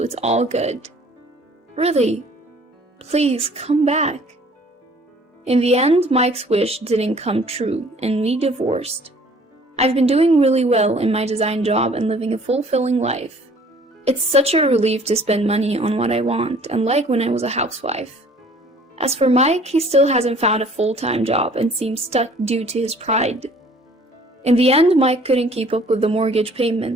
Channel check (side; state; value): both; normal; correlation 0.54